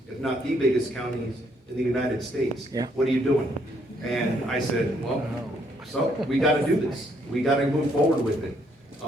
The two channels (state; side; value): normal; both; correlation 0.70